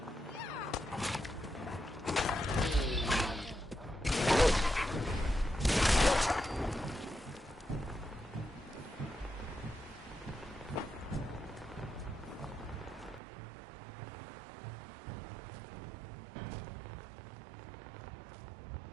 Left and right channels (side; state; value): left; drops out; at 13.2 s